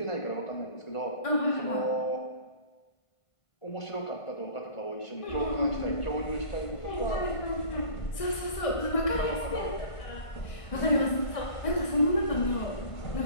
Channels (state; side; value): late; right; 1.6 ms